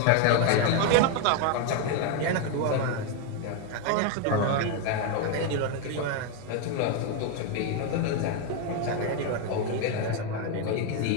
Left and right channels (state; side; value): different; both; correlation 0.01